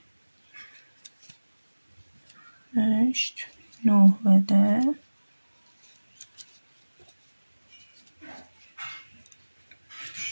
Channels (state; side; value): inverted; both; correlation -1.00